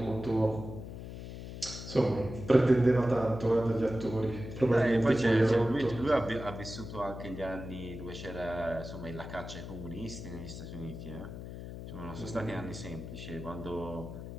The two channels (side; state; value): left; noise; hum, 10 dB below the sound